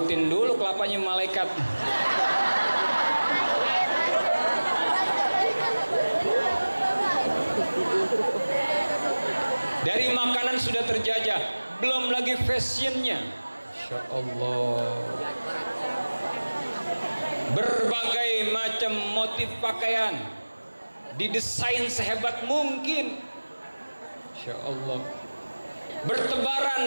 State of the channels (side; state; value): both; inverted; correlation -1.00